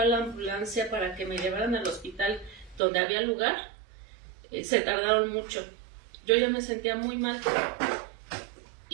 a la ambulancia para que me llevaran al hospital donde había lugar, se tardaron mucho. Yo ya me sentía muy mal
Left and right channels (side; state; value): left; drops out; at 2.8 s